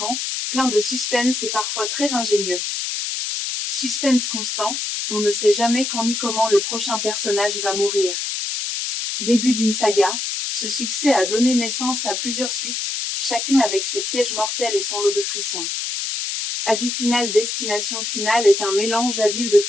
plein de suspense et parfois très ingénieux. Suspense constant, on ne sait jamais quand ni comment le prochain personnage va mourir. Début d'une saga, ce succès a donné naissance à plusieurs suites, chacune avec ses pièges mortels et son lot de frissons. Avis final. Destination finale est un mélange habile de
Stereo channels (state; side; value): noise; left; hiss, 3 dB below the sound